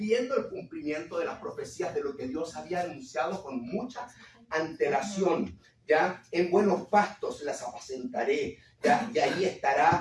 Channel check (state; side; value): identical; both; correlation 1.00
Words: el cumplimiento de las profecías de lo que Dios había anunciado con mucha antelación. ¿Ya? En buenos pastos las apacentaré, ¿ya? Y allí